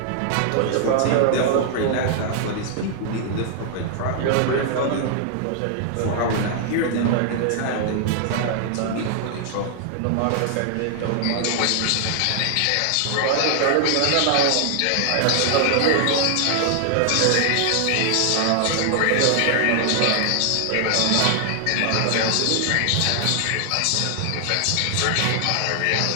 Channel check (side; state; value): both; different; correlation 0.00